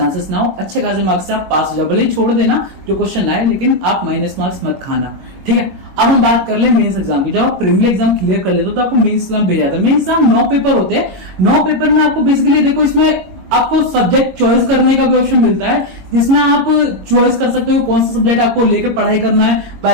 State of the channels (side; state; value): left; late; 22 ms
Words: ना हो। अच्छे खासे मार्क्स से आप पास हो जाओ, भले ही छोड़ देना जो क्वेश्चन आए, लेकिन आप माइनस मार्क्स मत खाना। ठीक है, अब हम बात कर ले मेंस एग्जाम की। जब आप प्रीलिमिनरी एग्जाम क्लियर कर लेते हो तो आपको मेंस एग्जाम भेजा जाता है। मेंस एग्जाम 9 पेपर होते हैं। 9 पेपर में आपको बेसिकली देखो इसमें आपको सब्जेक्ट चॉइस करने का भी ऑप्शन मिलता है, जिसमें आप चॉइस कर सकते हो कौन सा सब्जेक्ट आपको लेकर पढ़ाई करना है,